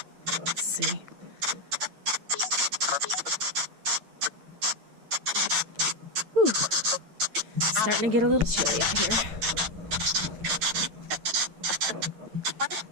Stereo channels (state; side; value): late; left; 8.9 ms